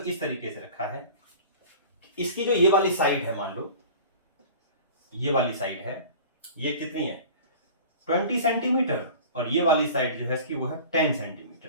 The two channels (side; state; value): both; inverted; correlation -0.40